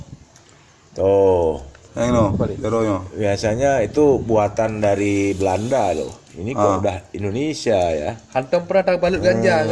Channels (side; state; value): both; identical; correlation 1.00